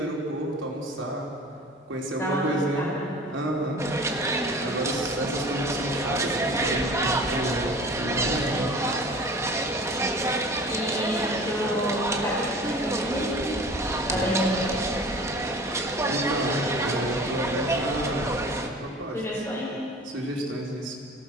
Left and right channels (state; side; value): normal; both; correlation 0.42